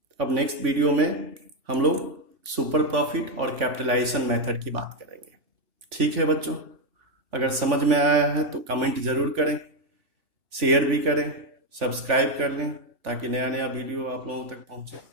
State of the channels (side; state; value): left; late; 3.4 ms